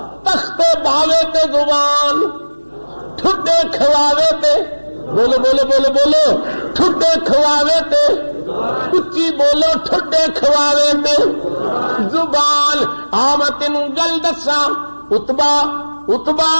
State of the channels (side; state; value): both; inverted; correlation -1.00